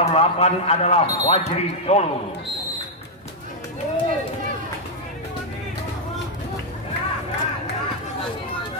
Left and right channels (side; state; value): both; normal; correlation -0.03